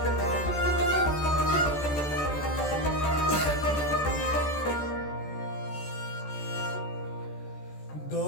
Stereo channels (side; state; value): right; late; 14 ms